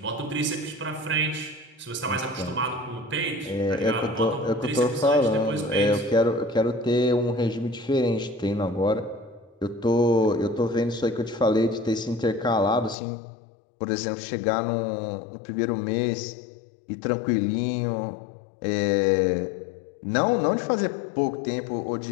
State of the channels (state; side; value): drops out; right; at 13.0 s